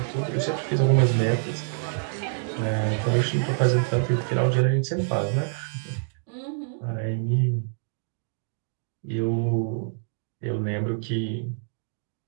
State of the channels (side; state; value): left; silent; digital silence